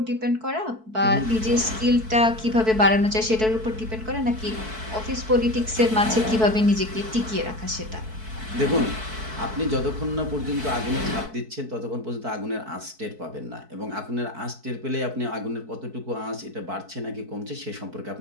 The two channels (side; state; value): left; late; 4.6 ms